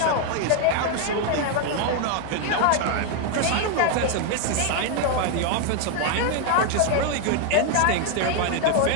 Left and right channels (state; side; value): different; both; correlation 0.01